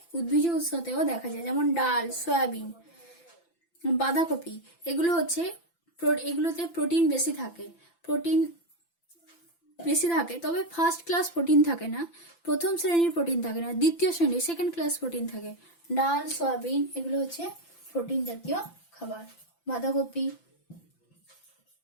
উদ্ভিজ উৎসতেও দেখা যায়, যেমন ডাল, সয়াবিন, বাঁধাকপি, এগুলোতে প্রোটিন বেশি থাকে, তবে ফার্স্ট ক্লাস প্রোটিন থাকে না, প্রথম শ্রেণীর প্রোটিন থাকে না, দ্বিতীয় শ্রেণীর সেকেন্ড ক্লাস প্রোটিন থাকে। ডাল, সয়াবিন এগুলো হচ্ছে প্রোটিন জাতীয় খাবার। বাঁধাকপি।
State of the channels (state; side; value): late; right; 5.9 ms